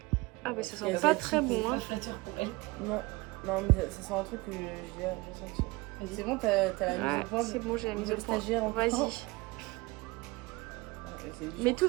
Ah bah ça Et sent pas très bon hein. Pas flatteur pour elle. Non, mais ça sent un truc que j'ai senti. C'est bon, t'as la mise Ouais, au point. c'est bon, j'ai la mise au point. Stagiaire encore. Vas-y. C'est dur. Mets tout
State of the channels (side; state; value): left; quieter; 22.9 dB